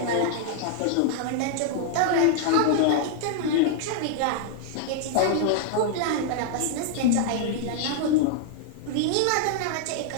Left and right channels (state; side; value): different; both; correlation 0.00